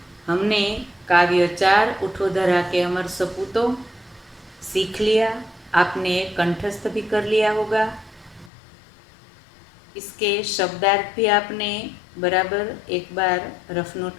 हमने काव्य 4 उठो धरा के अमर सपूतों सीख लिया। आपने कंठस्थ भी कर लिया होगा। इसके शब्दार्थ भी आपने बराबर एक बार रफ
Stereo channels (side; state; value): right; drops out; at 8.5 s